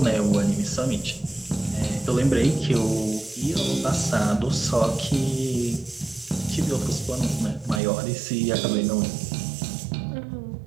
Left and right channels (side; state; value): left; drops out; at 7.8 s